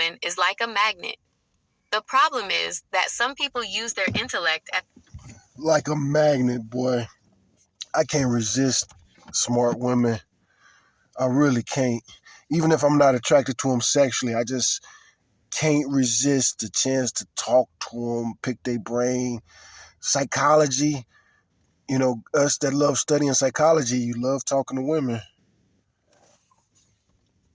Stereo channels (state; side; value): identical; both; correlation 1.00